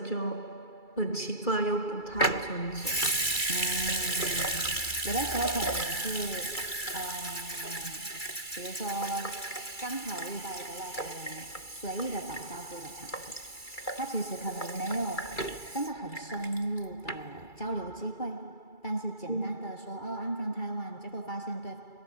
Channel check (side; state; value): right; late; 2.3 ms